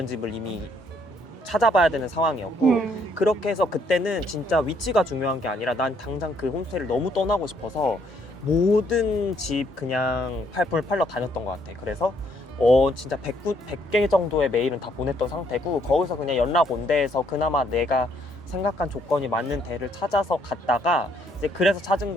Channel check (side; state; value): both; normal; correlation 0.69